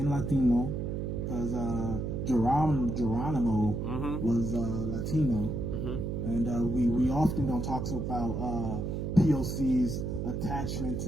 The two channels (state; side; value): noise; right; hum, 2 dB below the sound